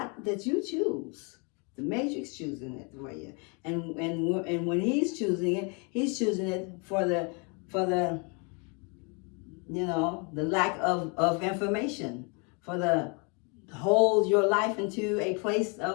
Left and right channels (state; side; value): quieter; right; 33.8 dB